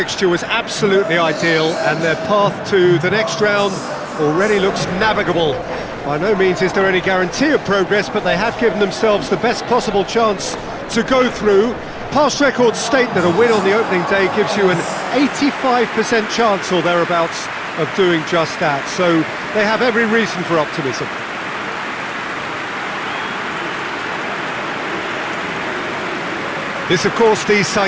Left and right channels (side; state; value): both; identical; correlation 1.00